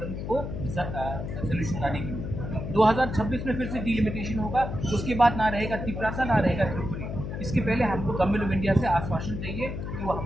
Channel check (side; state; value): left; noise; hum, 6 dB below the sound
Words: को सोल्यूशन लाने के लिए। 2026 में फिर से डिलिमिटेशन होगा, उसके बाद ना रहेगा त्रिपुरा, ना रहेगा त्रिपुरी। इसके पहले हमको गवर्नमेंट ऑफ इंडिया से आश्वासन चाहिए कि वो